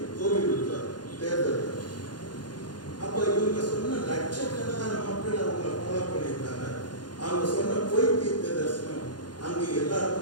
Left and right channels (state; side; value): late; right; 0.70 ms